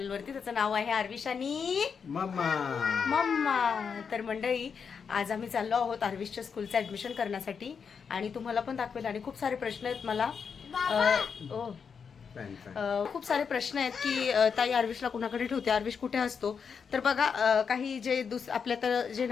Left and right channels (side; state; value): right; quieter; 6.3 dB